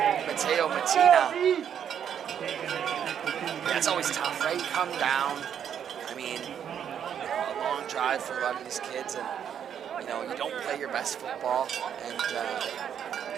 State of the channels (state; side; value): quieter; left; 8.7 dB